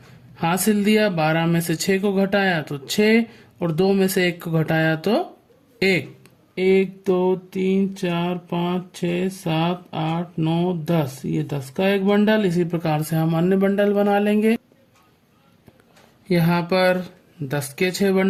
हासिल दिया 12 में से 6 को घटाया तो 6 और 2 में से 1 को घटाया तो 1। 1 2 3 4 5 6 7 8 9 10, ये 10 का एक बंडल। इसी प्रकार से हम अन्य बंडल बना लेंगे। यहाँ पर 10 के 6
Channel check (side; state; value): both; identical; correlation 1.00